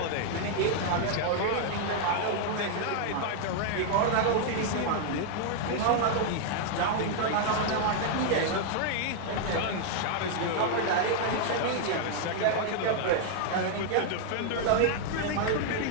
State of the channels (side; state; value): both; different; correlation 0.00